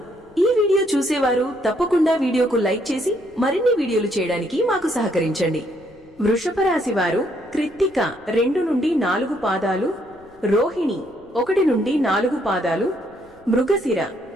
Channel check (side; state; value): left; noise; rumble, 28 dB below the sound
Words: ఈ వీడియో చూసేవారు తప్పకుండా వీడియోకు లైక్ చేసి మరిన్ని వీడియోలు చేయడానికి మాకు సహకరించండి. వృషభ రాశి వారు కృత్తిక 2 నుండి 4 పాదాలు, రోహిణి 1 నుండి 4 పాదాలు, మృగశిర